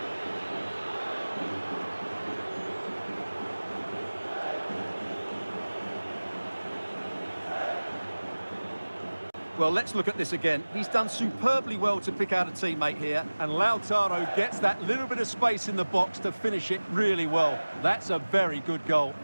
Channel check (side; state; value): both; inverted; correlation -1.00